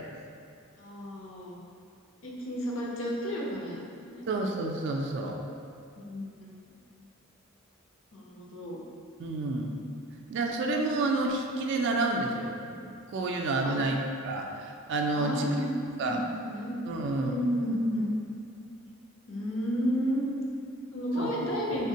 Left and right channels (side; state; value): both; normal; correlation 0.47